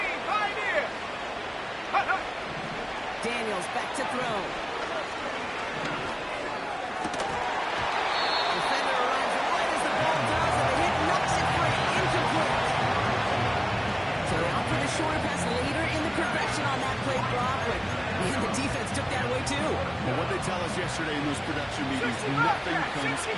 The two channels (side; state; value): both; identical; correlation 1.00